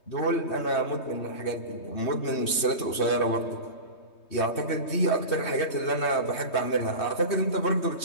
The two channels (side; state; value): right; late; 3.2 ms